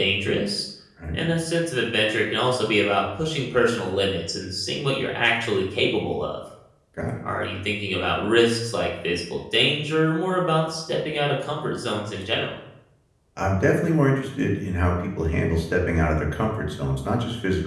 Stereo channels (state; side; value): identical; both; correlation 1.00